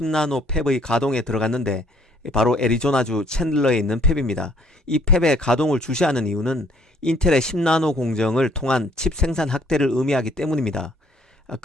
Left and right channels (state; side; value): normal; both; correlation 0.62